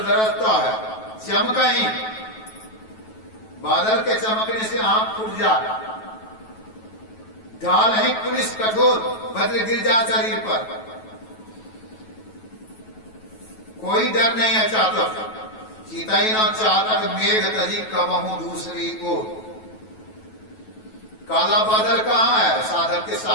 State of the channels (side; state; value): right; late; 9.2 ms